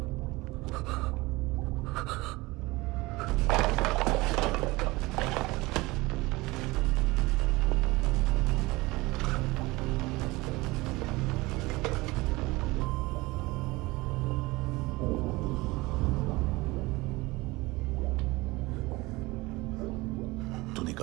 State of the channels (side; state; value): left; quieter; 21.8 dB